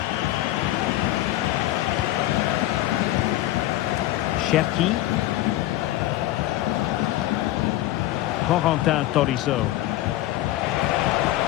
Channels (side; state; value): right; quieter; 15.2 dB